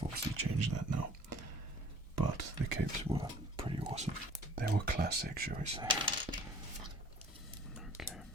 obviously changed that now, but the capes were pretty awesome. They were classic, shall we say. Okay.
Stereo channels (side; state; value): both; normal; correlation 0.51